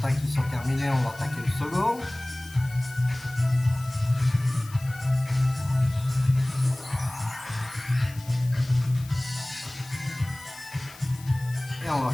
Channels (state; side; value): noise; left; hiss, 20 dB below the sound